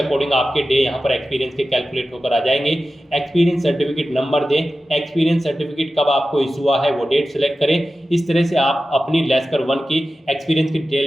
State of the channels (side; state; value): both; normal; correlation 0.94